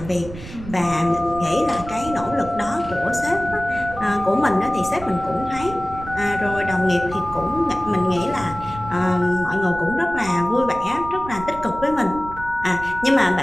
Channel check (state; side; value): noise; right; rumble, 13 dB below the sound